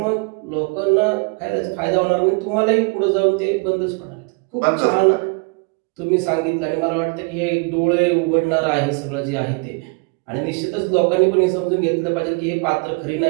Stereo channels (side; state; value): left; quieter; 30.9 dB